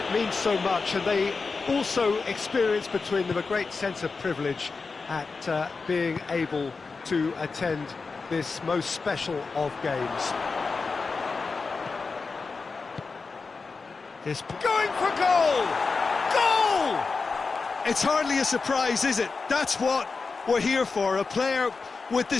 means so much, and they also experience between them a great sense of privilege at being able to attend this most special of games. This going for goal! Goal! It's hardly a surprise, is it? That's what we're here for, a player with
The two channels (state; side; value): quieter; right; 4.4 dB